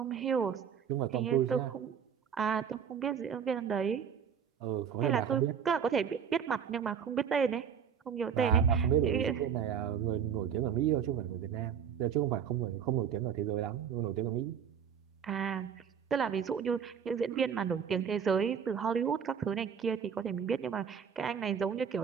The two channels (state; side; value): quieter; left; 7.6 dB